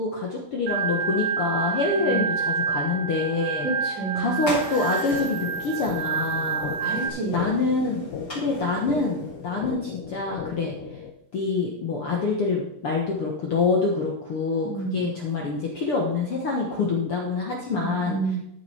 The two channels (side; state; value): both; normal; correlation -0.03